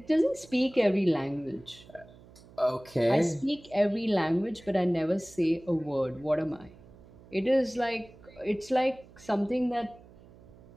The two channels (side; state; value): right; noise; hum, 23 dB below the sound